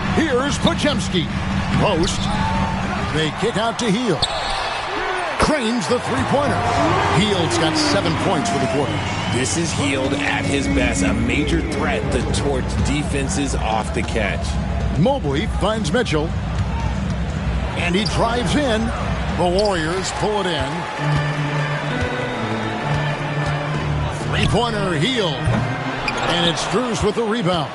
Here's Podziemski. Post. They kick out to Hield. Cranes the three-pointer. Hield's got 7 points for the quarter. This is Hield at his best, a major threat that towards defenses off the catch. Mobley finds Mitchell. And he drives in. The Warriors pull it in. Three-pointer, Hield. And it's Strus with the rebound.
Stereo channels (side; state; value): both; identical; correlation 1.00